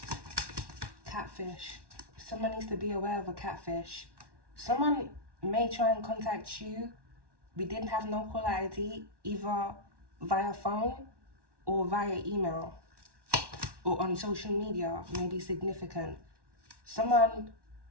Catfish. Someone needs to be aware of a catfish. Someone may try and contact you. We didn't have no caller ID, either via phone or via email or on social media, may be significant. Someone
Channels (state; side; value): late; left; 1.1 ms